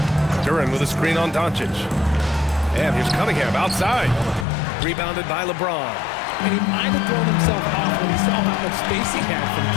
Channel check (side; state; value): right; drops out; at 4.5 s